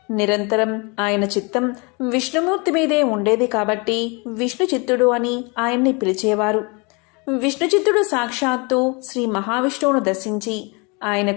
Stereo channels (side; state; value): right; quieter; 30.1 dB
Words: నిరంతరం ఆయన చిత్తం విష్ణుమూర్తి మీదే ఉండేది కాబట్టి విష్ణుచిత్తుడు అని ఆయన్ని పిలిచేవారు. విష్ణుచిత్తుడు సాక్షాత్తు శ్రీ మహావిష్ణువును దర్శించి